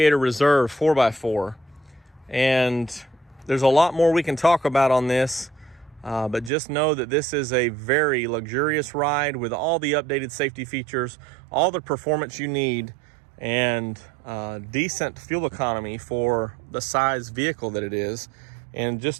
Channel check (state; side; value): drops out; left; at 6.5 s